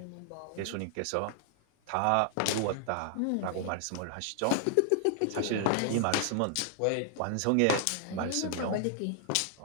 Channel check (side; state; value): both; different; correlation 0.00